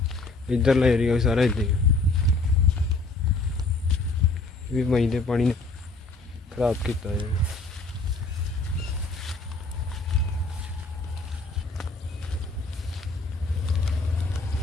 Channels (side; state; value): right; quieter; 3.3 dB